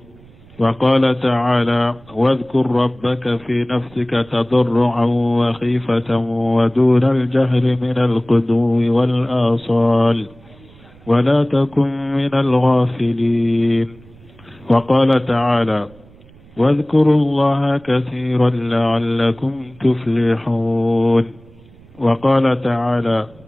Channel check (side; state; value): right; noise; rumble, 25 dB below the sound